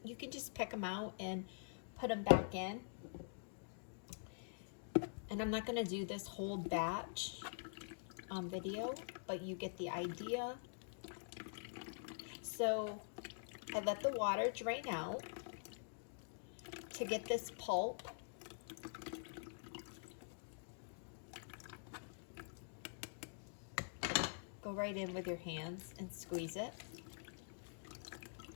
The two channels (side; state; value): right; silent; digital silence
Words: you can just pick them out and put them back in. And I'm not going to do this whole batch video, but you get the idea. So I let the water drain out to get this pulp. Go right in with your hands and squeeze it.